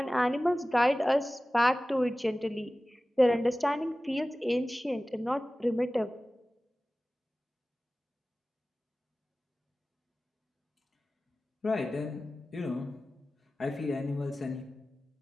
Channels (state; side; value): normal; both; correlation 0.97